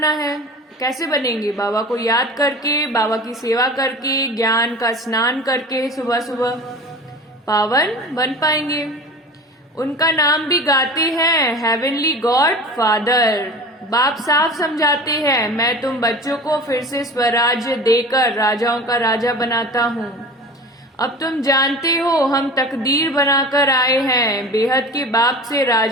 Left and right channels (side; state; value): both; normal; correlation 0.37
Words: है। कैसे बनेंगे? बाबा को याद करके, बाबा की सेवा करके, ज्ञान का स्नान करके सुबह सुबह पावन बन पाएंगे। उनका नाम भी गाते हैं, हेवनली गॉड फादर। बाप साफ समझाते हैं मैं तुम बच्चों को फिर से स्वराज्य देकर राजाओं का राजा बनाता हूँ। अब तुम जानते हो हम तकदीर बनाकर आए हैं बेहद के बाप से